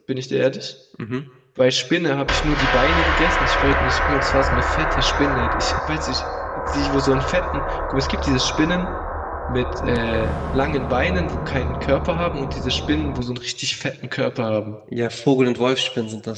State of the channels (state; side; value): identical; both; correlation 1.00